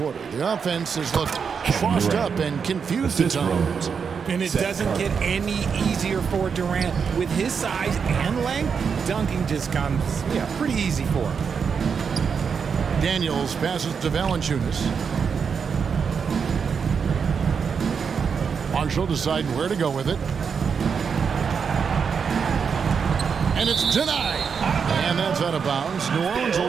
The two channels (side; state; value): left; quieter; 6.2 dB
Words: The offense has looked crossed up and confused at times. And it doesn't get any easier for Durant. With his size and length, dunking just comes pretty easy for him. Daniels passes to Valanciunas. Marshall deciding where to go with it. And it's denied. And that's out of bounds. New Orleans